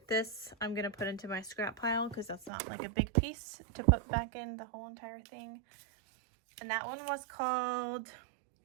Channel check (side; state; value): left; drops out; at 2.5 s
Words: this I'm gonna put into my scrap pile because that's not like a big piece to put back in the whole entire thing. And that one was called